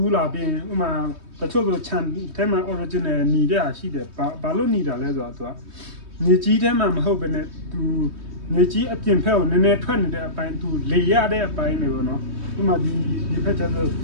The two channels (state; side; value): late; left; 3.2 ms